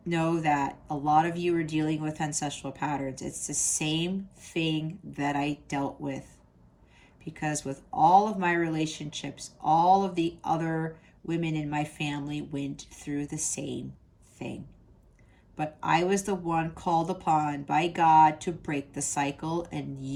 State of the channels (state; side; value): identical; both; correlation 1.00